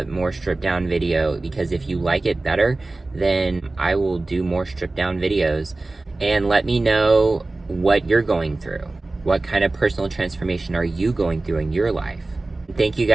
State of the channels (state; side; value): quieter; left; 3.1 dB